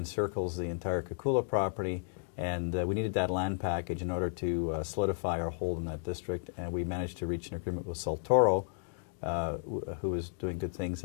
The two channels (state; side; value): silent; right; digital silence